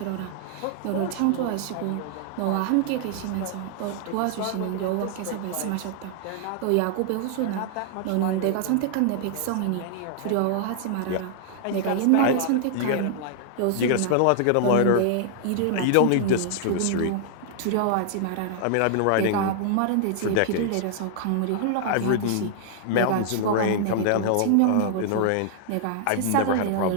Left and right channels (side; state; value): both; different; correlation -0.01